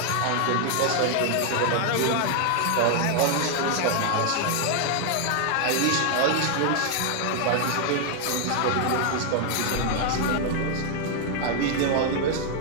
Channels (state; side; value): different; both; correlation 0.00